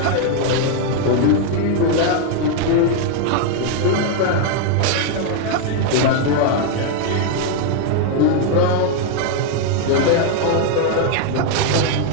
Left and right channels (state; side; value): different; both; correlation 0.00